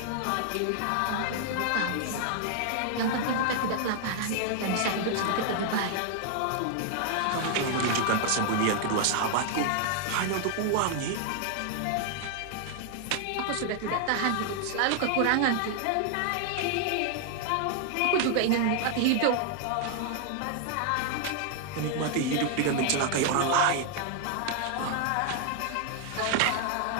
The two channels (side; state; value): both; different; correlation 0.00